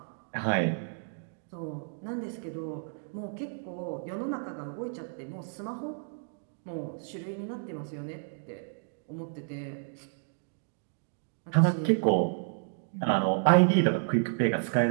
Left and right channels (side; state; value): left; silent; digital silence